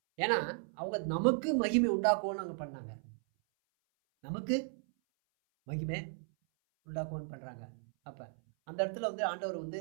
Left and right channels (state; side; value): silent; left; 54 dB below the other